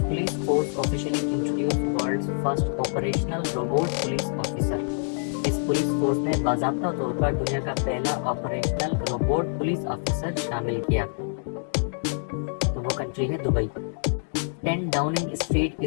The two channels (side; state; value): right; silent; digital silence